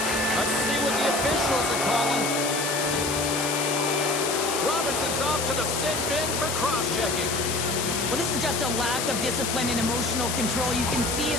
Let's see what the officials are calling. Robertson's off to the sin bin for cross-checking. Well, this is just a lack of discipline and emotional control. You can see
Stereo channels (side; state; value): left; noise; hiss, 2 dB below the sound